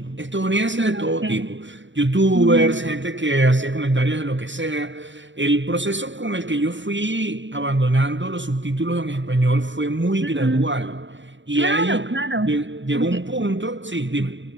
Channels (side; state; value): left; late; 0.54 ms